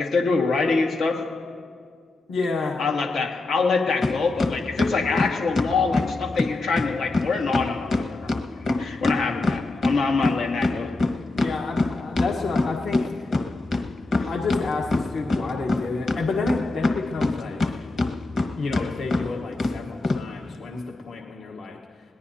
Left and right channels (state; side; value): quieter; right; 3.1 dB